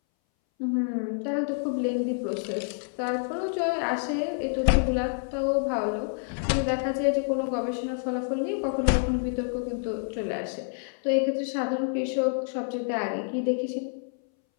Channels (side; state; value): right; silent; 59 dB below the other